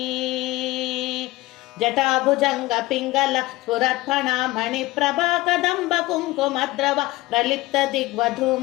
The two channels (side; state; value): right; quieter; 19.5 dB